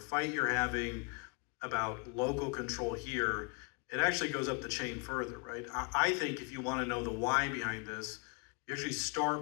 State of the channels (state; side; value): quieter; right; 32.8 dB